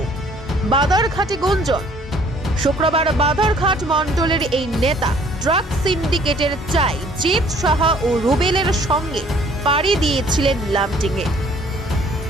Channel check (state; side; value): normal; both; correlation 0.58